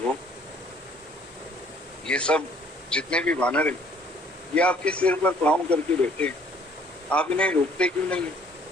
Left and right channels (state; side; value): normal; both; correlation 0.59